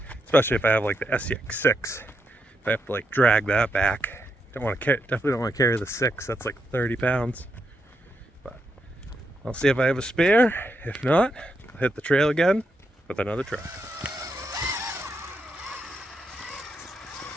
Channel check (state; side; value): normal; both; correlation 0.81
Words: Especially if I have like the SEX6. If I have to like drag that back. Definitely don't want to carry the 6, that's like 30 pounds. But I'll see if I have a spare. If not, I'll hit the trail again with another truck.